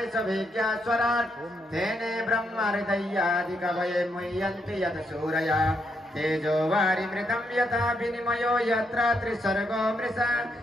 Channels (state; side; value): normal; both; correlation 0.78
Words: तेने ब्रह्महृदयादिकवये मुह्यन्ति यत् सूरया तेजो वारिमृतं यथा विनिमयो यत्र त्रिसर्गो मृषा